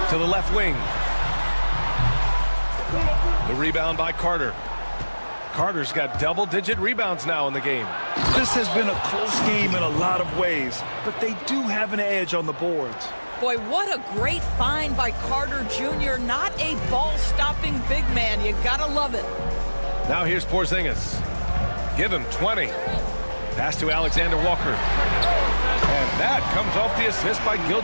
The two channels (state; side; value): inverted; both; correlation -1.00